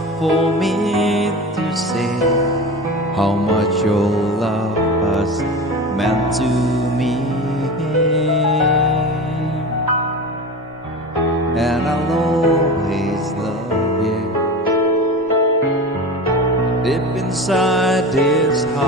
for me to say how much your love has meant to me. And I'll always love you. Deep inside this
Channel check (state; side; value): normal; both; correlation 0.30